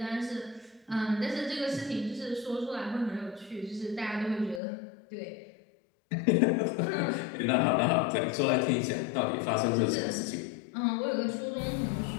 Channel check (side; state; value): right; drops out; at 4.6 s